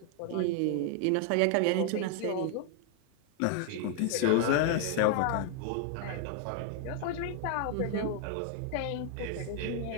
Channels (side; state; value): both; different; correlation 0.00